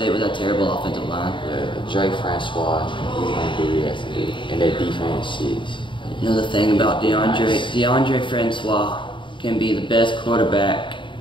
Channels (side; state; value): right; late; 0.24 ms